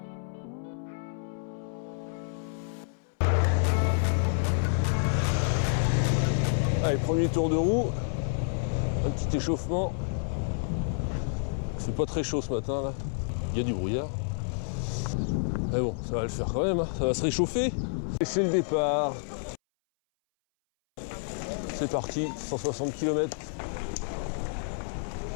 Allez, premier tour de roue, un petit échauffement. C'est pas très chaud ce matin là, il y a du brouillard. Mais bon, ça va le faire quand même, hein. Ça va se réchauffer. Et c'est le départ. C'est parti, 160 km.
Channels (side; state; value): right; silent; 58 dB below the other